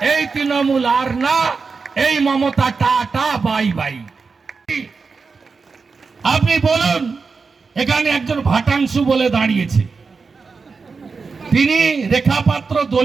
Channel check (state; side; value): quieter; left; 4.8 dB